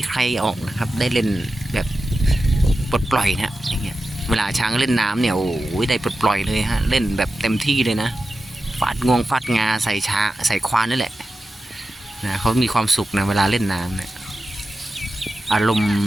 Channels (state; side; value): normal; both; correlation 0.92